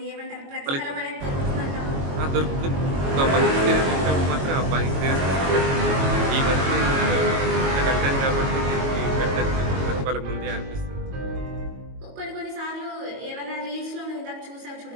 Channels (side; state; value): left; late; 22 ms